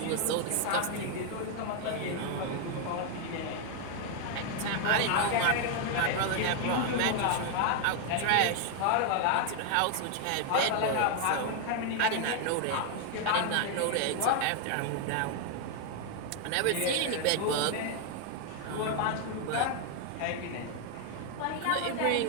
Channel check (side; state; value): both; different; correlation 0.01